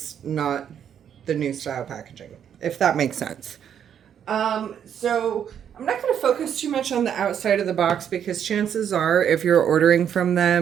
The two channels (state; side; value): quieter; left; 8.8 dB